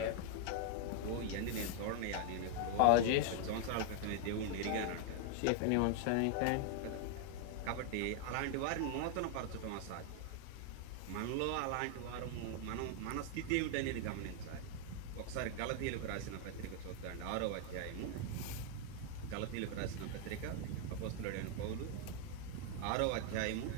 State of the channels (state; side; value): different; both; correlation 0.00